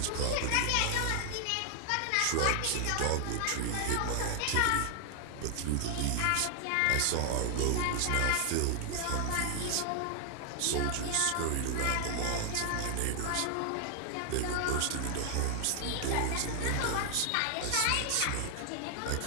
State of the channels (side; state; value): both; different; correlation 0.00